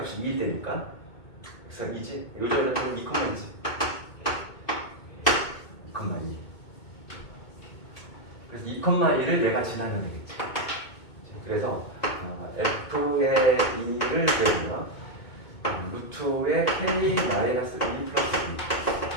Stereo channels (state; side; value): late; right; 2.2 ms